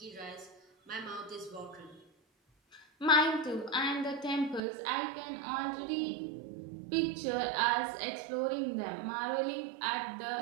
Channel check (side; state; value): left; drops out; at 4.6 s